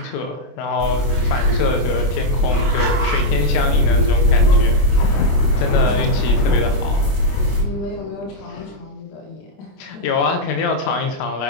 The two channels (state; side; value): late; right; 25 ms